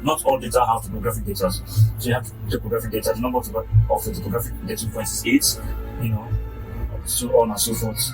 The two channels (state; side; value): identical; both; correlation 1.00